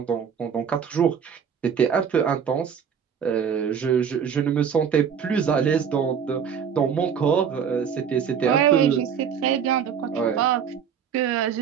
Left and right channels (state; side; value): quieter; left; 7.5 dB